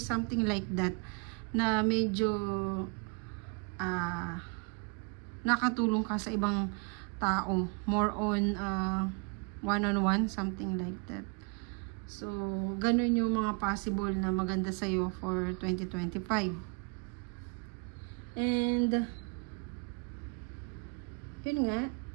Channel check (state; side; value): quieter; left; 32.5 dB